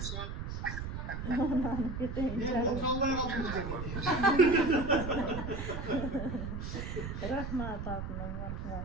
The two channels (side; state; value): right; noise; rumble, 5 dB below the sound